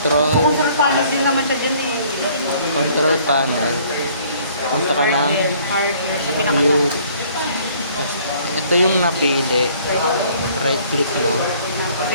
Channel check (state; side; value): inverted; both; correlation -0.58